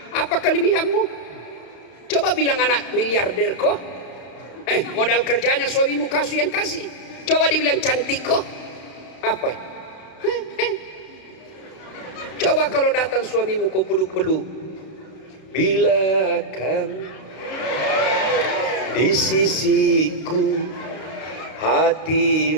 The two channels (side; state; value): right; late; 32 ms